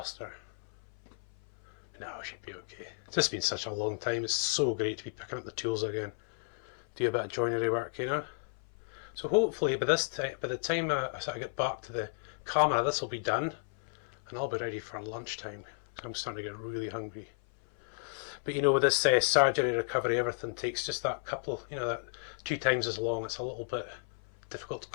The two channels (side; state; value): right; silent; 55 dB below the other